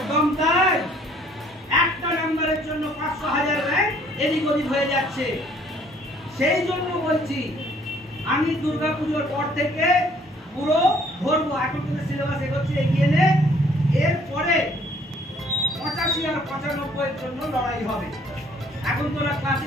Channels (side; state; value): both; normal; correlation 0.60